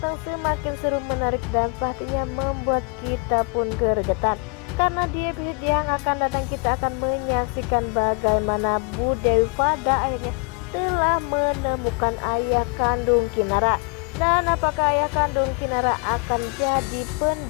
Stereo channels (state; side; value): quieter; right; 32.9 dB